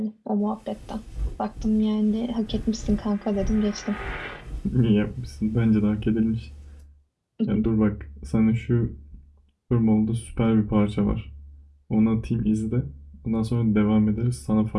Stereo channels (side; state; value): both; identical; correlation 1.00